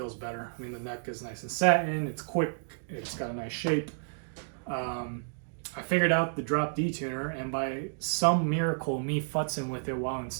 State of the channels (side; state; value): left; silent; digital silence